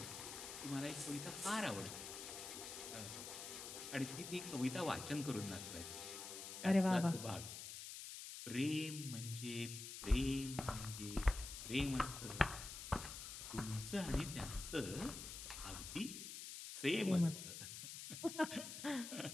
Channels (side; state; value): left; noise; hiss, 8 dB below the sound